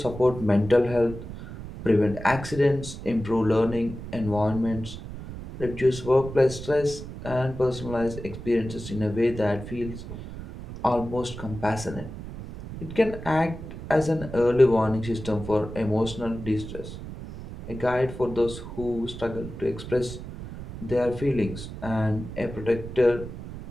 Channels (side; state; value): right; noise; rumble, 11 dB below the sound